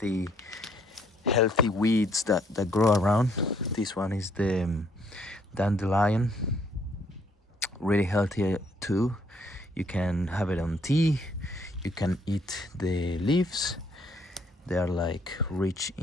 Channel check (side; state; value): both; normal; correlation 0.67